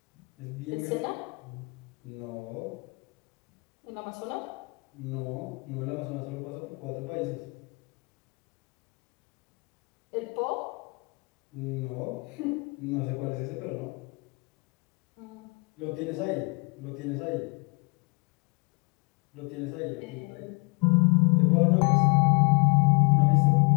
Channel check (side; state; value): right; quieter; 31.6 dB